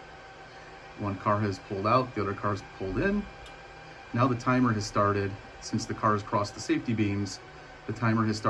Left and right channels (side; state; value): both; identical; correlation 1.00